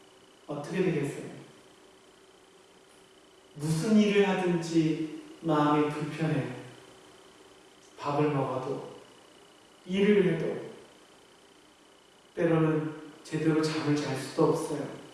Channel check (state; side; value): identical; both; correlation 1.00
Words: 어떻게 되겠어요? 무슨 일을 하든지 마음이 불편해요. 밥을 먹어도, 일을 해도, 때로는 제대로 잠을 잘 수도 없어요.